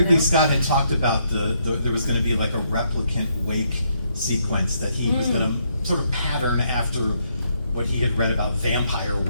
Scott had talked about there was going to be like a replicant wake sequence that he was going to sort of pattern after what he had read about Vampire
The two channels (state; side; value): inverted; both; correlation -0.74